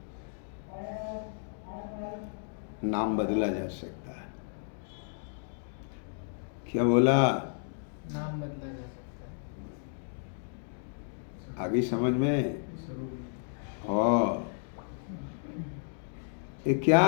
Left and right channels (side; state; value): right; silent; digital silence